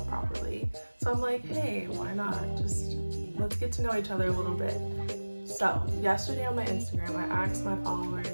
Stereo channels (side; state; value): both; inverted; correlation -1.00